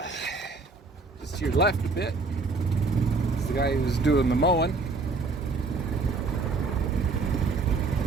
just to your left a bit, is the guy who's doing the mowing.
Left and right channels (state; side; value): quieter; left; 3.9 dB